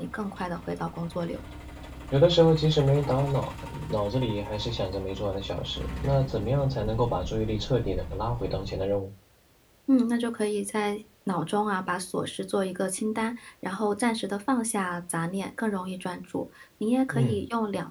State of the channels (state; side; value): identical; both; correlation 1.00